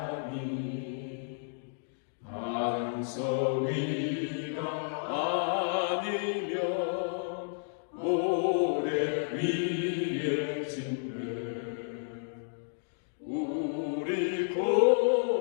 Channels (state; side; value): silent; right; digital silence